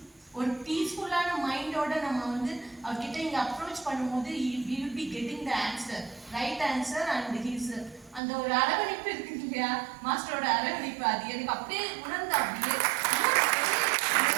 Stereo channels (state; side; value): drops out; left; at 8.2 s